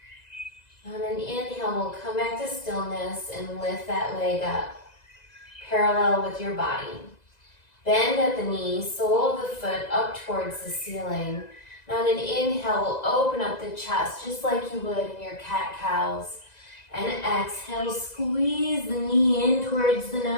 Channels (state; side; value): late; right; 2.0 ms